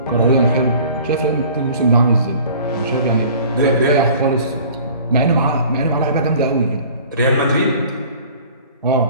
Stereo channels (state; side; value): inverted; both; correlation -0.48